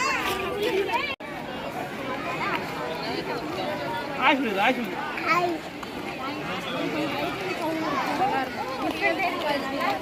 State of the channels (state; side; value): identical; both; correlation 1.00